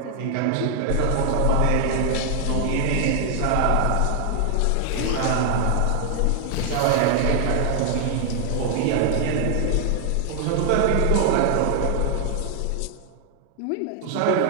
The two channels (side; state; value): both; different; correlation 0.00